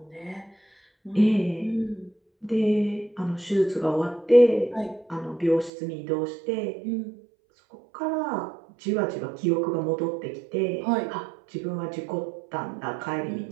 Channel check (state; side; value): drops out; left; at 5.7 s